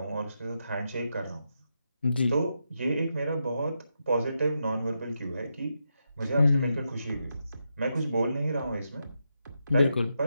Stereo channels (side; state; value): both; inverted; correlation -0.85